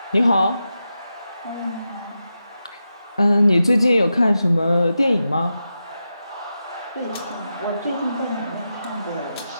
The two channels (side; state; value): both; inverted; correlation -0.89